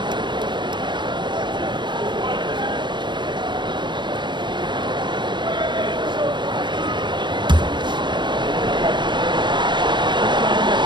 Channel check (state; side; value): late; left; 0.22 ms